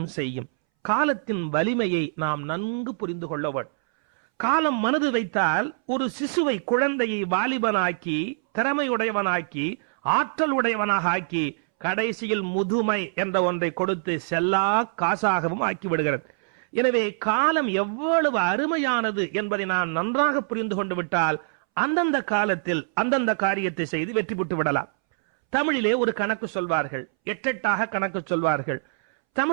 செய்யும். காலத்தின் வலிமையை நாம் நன்கு புரிந்து கொள்ள வேண்டும். காலம் மனது வைத்தால் ஒரு சிசுவை, குழந்தையை வாலிபனாக்கி, திறமையுடையவனாக்கி, ஆற்றல் உடையவனாக ஆக்கி, கடைசியில் முதுமை என்ற ஒன்றை கொடுத்து செல்லா காசாகவும் ஆக்கி விடுகிறது. எனவே காலம் எவ்வளவு அருமையானது என்பதை நான் நன்றாக புரிந்து கொண்டு விட்டால் அந்தந்த காலத்தில் அந்தந்த காரியத்தை செய்து வெற்றி பெற்று விடலாம். தமிழிலே ஒரு கணக்கு சொல்வார்கள், எட்டெட்டாக கணக்கு சொல்வார்கள்.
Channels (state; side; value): silent; left; 62 dB below the other